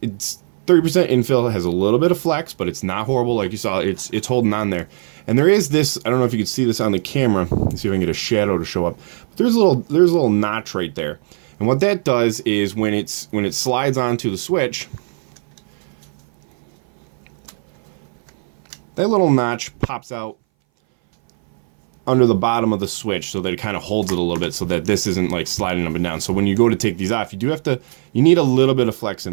It's 30% infill. It has a little bit of flex, but it's not horrible. Like you saw, it's holding on there. And there is this, I don't know if you can see this on the camera. Let's see if I can get a shadow to show up. But there's a little notch right there. And what that does is when it slides onto the Switch, that little notch pops out under the bottom of the Switch, so that it kind of holds it a little bit, so that this isn't like sliding up and down. So when you go to take these off, you need a little bit of flex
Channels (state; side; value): silent; left; 61 dB below the other